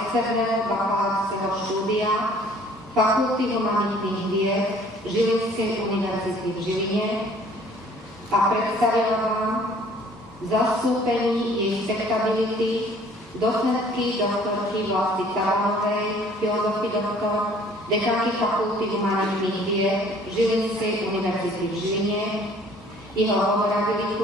bakalárskeho štúdia Fakulty humanitných vied Žilinskej univerzity v Žiline a predstavila vám v zastúpení jej spektrability docentky doktorky Vlasty Cavanovej, filozofii doktor, dekanky Fakulty humanitných vied Žilinskej univerzity v Žiline, jeho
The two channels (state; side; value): normal; both; correlation 0.55